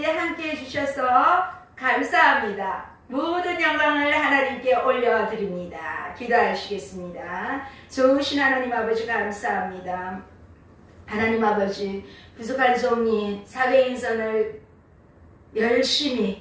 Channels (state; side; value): identical; both; correlation 1.00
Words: 함께 해주셔서 감사합니다. 모든 영광을 하나님께 올려드립니다. 기도하시겠습니다. 좋으신 하나님 아버지 감사합니다. 하나님 아버지, 부족한 종이 사도행전을